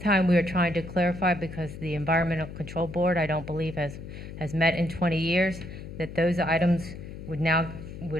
time we are trying to clarify, because the Environmental Control Board, I don't believe, has met in 20 years, that those items which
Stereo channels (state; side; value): noise; left; hum, 11 dB below the sound